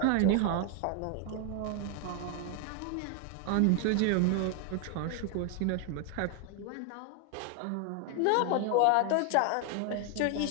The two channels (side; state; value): both; different; correlation 0.01